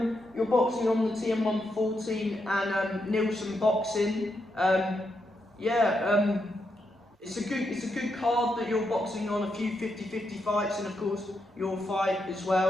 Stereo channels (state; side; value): normal; both; correlation 0.82